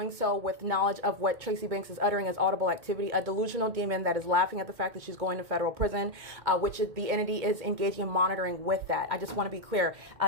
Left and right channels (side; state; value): left; late; 2.2 ms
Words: so with knowledge of what Tracy Banks is uttering as audible activity, a delusional demon that is laughing at the fact that she's going to federal prison, which is, the entity is engaging in monitoring with that. I just want to be clear.